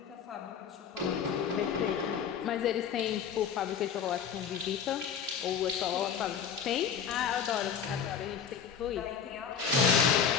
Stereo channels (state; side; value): quieter; right; 7.3 dB